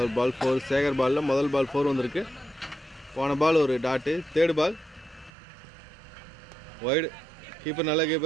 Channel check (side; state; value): left; drops out; at 5.3 s